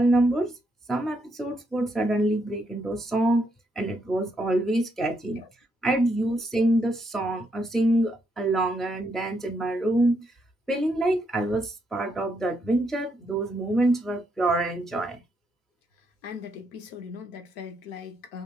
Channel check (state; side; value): normal; both; correlation 0.77